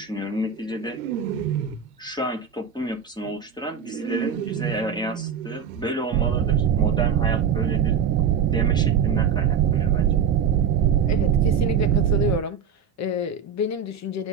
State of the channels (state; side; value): quieter; left; 6.8 dB